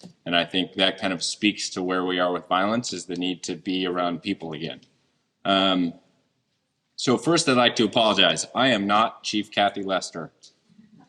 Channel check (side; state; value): both; identical; correlation 1.00